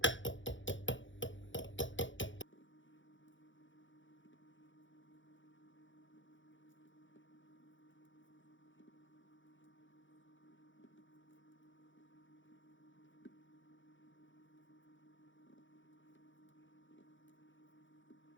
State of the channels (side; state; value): right; late; 0.56 ms